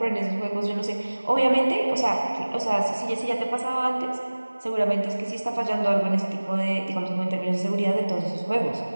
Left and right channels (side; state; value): both; inverted; correlation -1.00